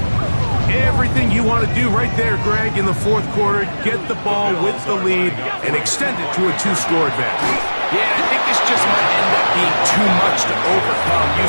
Everything you want to do right there, Greg, in the 4th quarter, get the ball with the lead and extend it to a 2-score advantage. Yeah, I think this just might end up being too much to overcome. You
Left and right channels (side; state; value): both; inverted; correlation -1.00